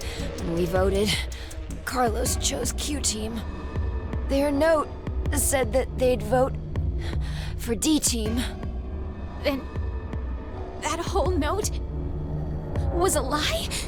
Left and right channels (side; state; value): both; identical; correlation 1.00